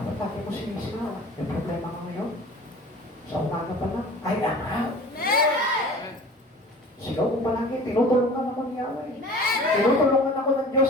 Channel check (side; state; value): both; normal; correlation 0.42